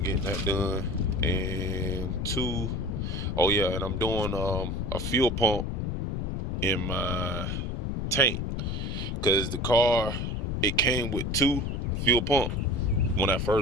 getting that done. And oh yeah, and I'm doing a fuel pump in my tank, because the car, it came with 2 fuel pumps when I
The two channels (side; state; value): left; noise; rumble, 2 dB below the sound